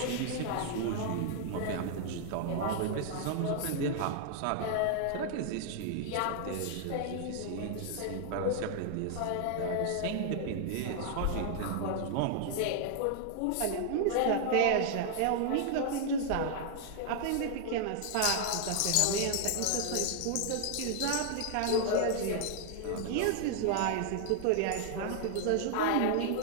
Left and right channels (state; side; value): different; both; correlation 0.00